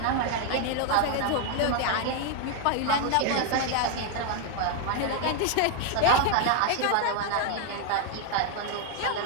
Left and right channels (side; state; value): both; different; correlation 0.01